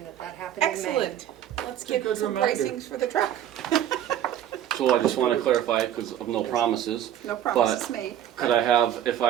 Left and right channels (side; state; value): left; quieter; 10.9 dB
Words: that happened in May. Excellent. Let's It's a get good some reminder. pricings for the truck. So I just want to clarify, because of no promises, No promises made. could I have, if